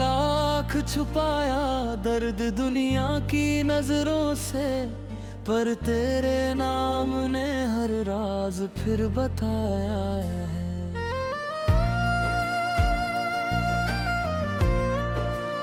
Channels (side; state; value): both; identical; correlation 1.00